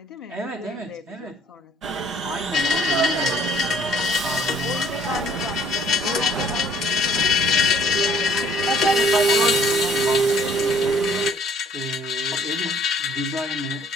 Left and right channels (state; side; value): normal; both; correlation 0.60